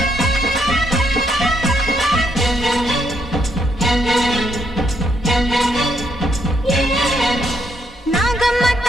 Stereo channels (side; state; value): both; normal; correlation 0.75